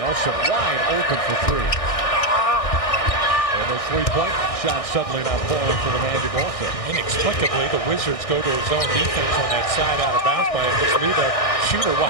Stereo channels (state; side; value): late; right; 1.6 ms